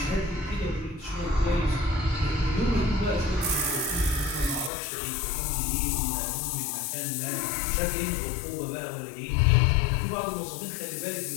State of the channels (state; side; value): drops out; right; at 4.7 s